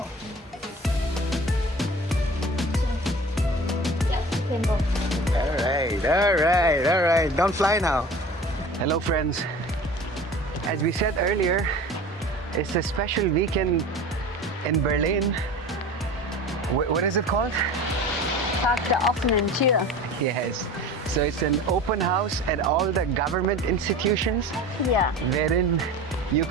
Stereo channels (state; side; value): normal; both; correlation 0.39